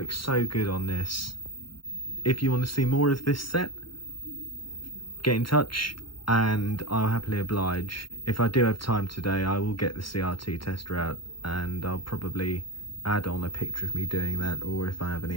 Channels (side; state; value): right; late; 0.73 ms